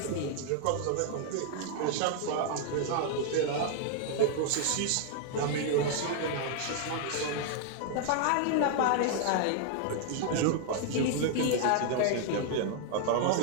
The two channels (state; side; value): different; both; correlation 0.00